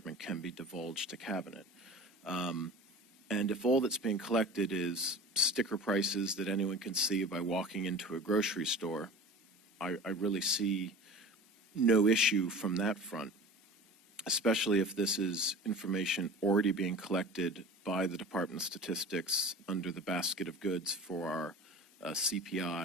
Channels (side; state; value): both; normal; correlation 0.37